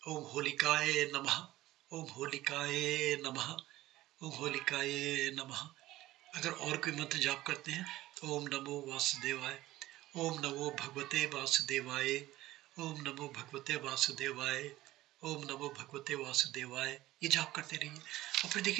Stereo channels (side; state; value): left; quieter; 16.3 dB